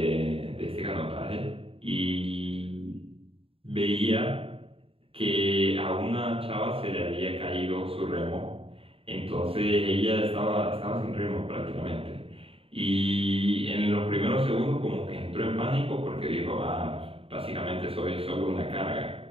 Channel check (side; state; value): left; late; 0.27 ms